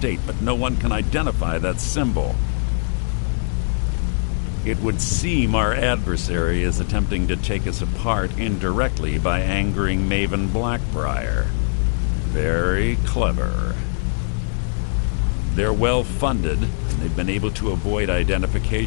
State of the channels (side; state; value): right; silent; 65 dB below the other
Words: but no one can identify that symbol. It would seem our adversary is attempting to take us apart indirectly by angering Maven Blackbriar. Very clever. They're well funded, and they've been able to avoid